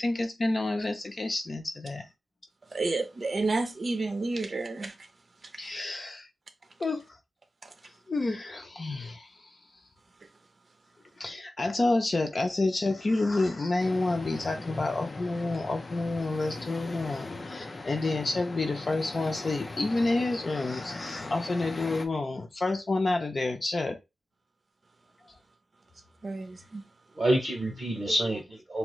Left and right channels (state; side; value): normal; both; correlation 0.94